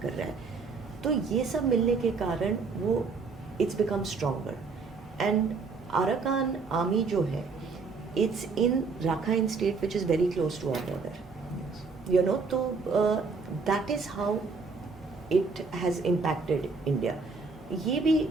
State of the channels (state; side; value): quieter; left; 4.5 dB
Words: कर रहा है. तो ये सब मिलने के कारण वो it's become stronger. And Arakan army जो है, it's in Rakhine state which is very close to our border. तो that is how it has impacted India. ये भी